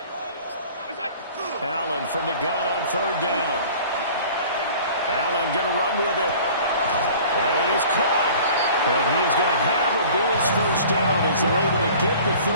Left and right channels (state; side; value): inverted; both; correlation -0.46